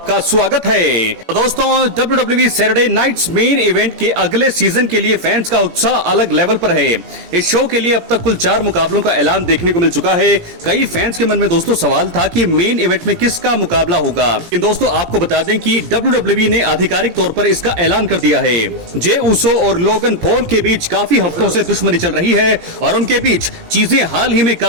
स्वागत है। तो दोस्तों WWE Saturday nights main event के अगले सीजन के लिए फैंस का उत्साह अलग लेवल पर है। इस शो के लिए अब तक कुल 4 मुकाबलों का ऐलान देखने को मिल चुका है। कई फैंस के मन में दोस्तों सवाल था कि मेन इवेंट में किसका मुकाबला होगा। लेकिन दोस्तों आपको बता दें कि WWE ने आधिकारिक तौर पर इसका ऐलान कर दिया है। जे उसो और लोगन पॉल के बीच काफी हफ्तों से दुश्मनी चल रही है और उनके बीच चीजें हाल ही में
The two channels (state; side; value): late; left; 18 ms